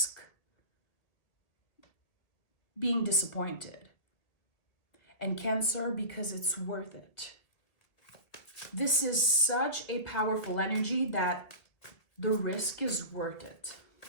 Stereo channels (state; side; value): late; right; 2.0 ms